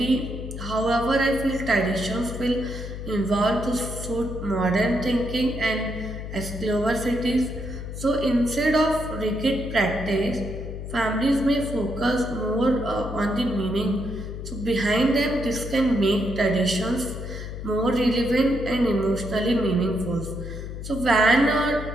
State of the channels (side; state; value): left; noise; hum, 8 dB below the sound